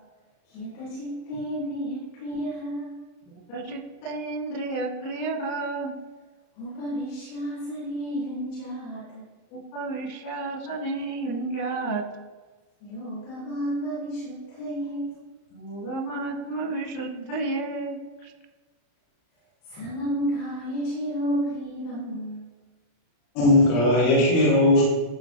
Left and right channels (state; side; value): late; right; 35 ms